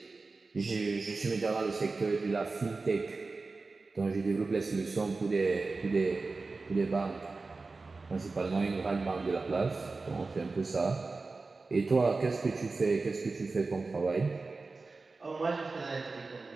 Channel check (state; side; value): quieter; left; 3.8 dB